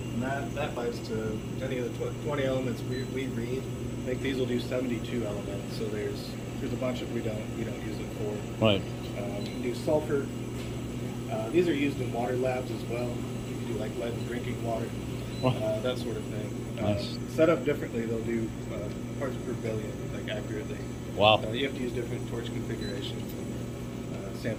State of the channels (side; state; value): both; identical; correlation 1.00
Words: And that applies to any of the 20 elements we read. I think these will do 72 elements, so there's a bunch of we don't use it for. Right. You can do sulfur. These are used in water labs as well. You can do like lead in drinking water, that sort of thing. Nice. Set up differently, they'll do parts per billion, like accurately. Wow. You have to use different torch configurations and